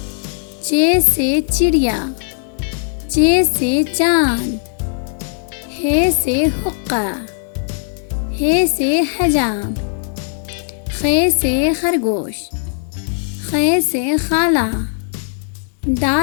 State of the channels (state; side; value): silent; right; 61 dB below the other